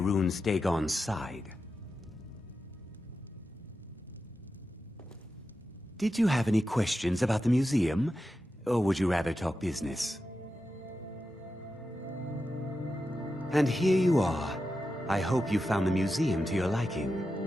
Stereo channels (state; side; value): normal; both; correlation 0.90